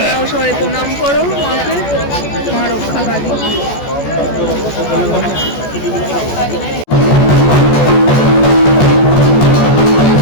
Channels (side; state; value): right; late; 14 ms